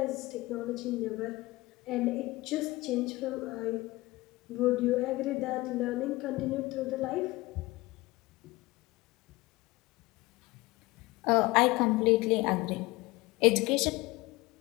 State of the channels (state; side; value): quieter; right; 20.8 dB